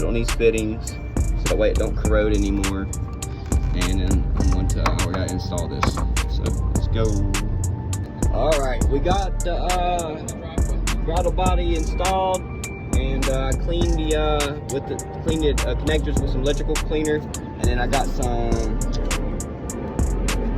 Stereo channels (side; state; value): both; identical; correlation 1.00